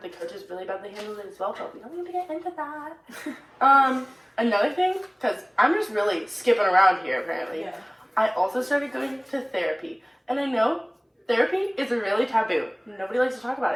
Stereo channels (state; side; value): identical; both; correlation 1.00